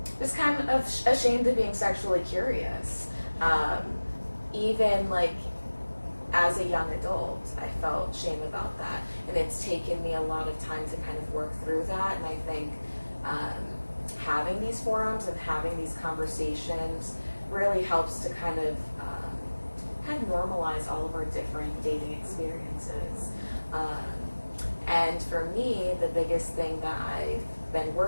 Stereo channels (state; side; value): inverted; both; correlation -1.00